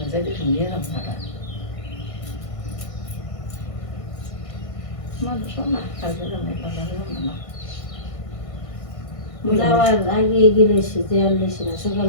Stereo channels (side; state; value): right; late; 1.5 ms